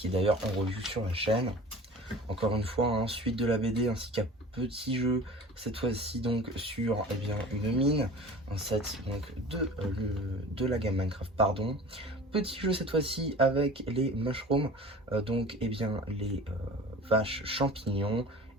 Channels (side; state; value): both; normal; correlation 0.40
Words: est d'ailleurs en revue sur la chaîne. Encore une fois, suite de la BD ainsi qu'un petit jeu, cette fois-ci donc sur une mine, un set donc de la gamme Minecraft, pardon. Petit jeu cette fois-ci avec les mushrooms, donc les vaches champignons,